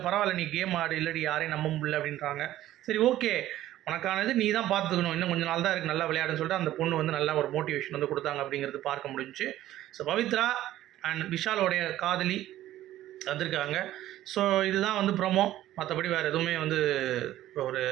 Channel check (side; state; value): left; quieter; 13.9 dB